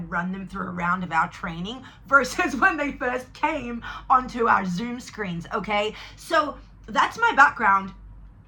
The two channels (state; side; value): identical; both; correlation 1.00